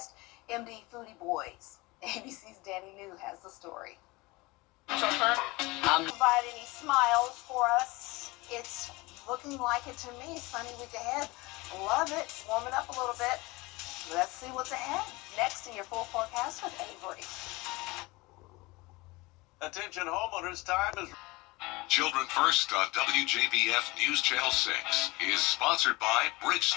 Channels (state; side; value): quieter; right; 23.1 dB